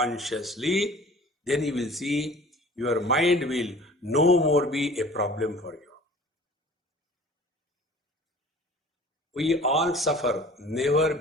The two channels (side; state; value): both; normal; correlation 0.46